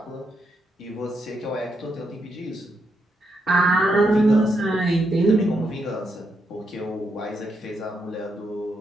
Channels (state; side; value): normal; both; correlation 0.80